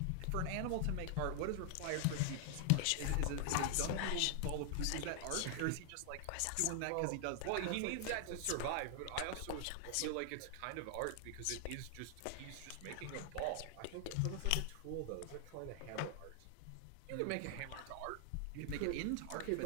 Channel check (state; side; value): different; both; correlation 0.00